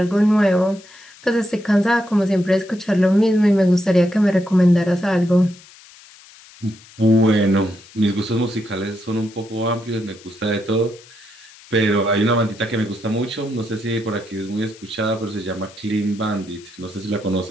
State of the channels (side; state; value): left; noise; hiss, 23 dB below the sound